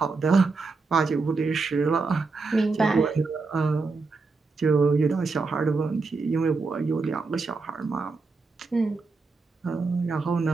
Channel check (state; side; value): quieter; left; 4.1 dB